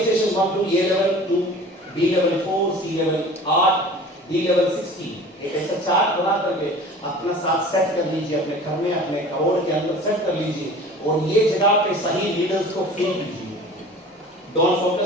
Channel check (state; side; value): normal; both; correlation 0.42